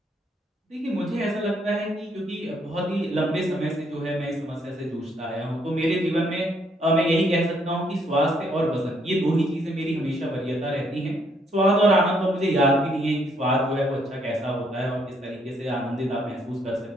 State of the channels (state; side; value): normal; both; correlation 0.70